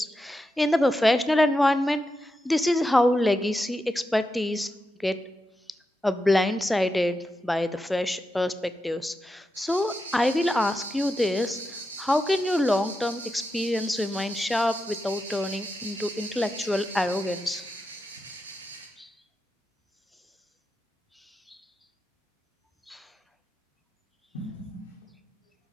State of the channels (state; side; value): normal; both; correlation 0.87